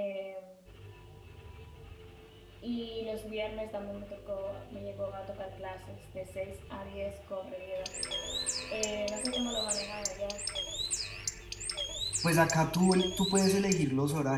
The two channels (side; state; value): both; identical; correlation 1.00